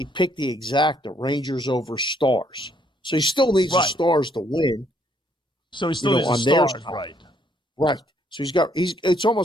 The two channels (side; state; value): both; normal; correlation 0.69